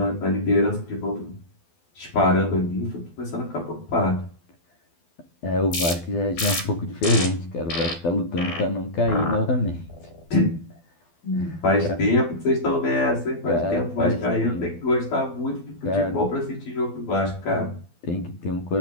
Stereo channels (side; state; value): right; late; 12 ms